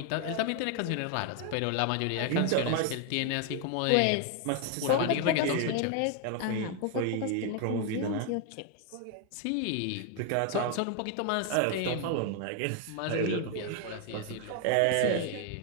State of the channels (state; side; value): different; both; correlation 0.01